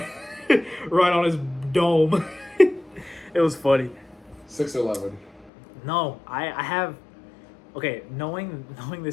right on his dome. It was funny. 6-11. No, I have. Okay, knowing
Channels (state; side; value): drops out; right; at 5.5 s